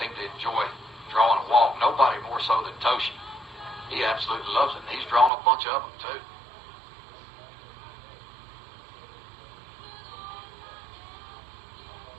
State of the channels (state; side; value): drops out; left; at 5.3 s